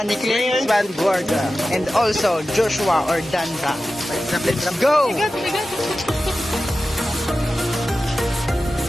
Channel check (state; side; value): normal; both; correlation 0.94